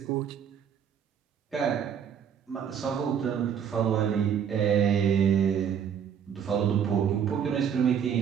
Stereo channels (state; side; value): quieter; left; 8.1 dB